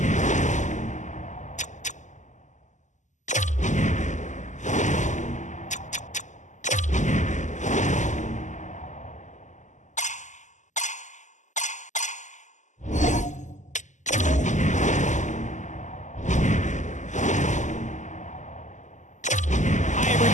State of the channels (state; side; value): late; right; 0.35 ms